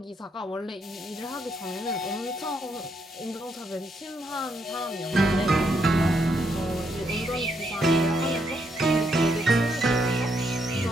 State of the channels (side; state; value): both; normal; correlation 0.76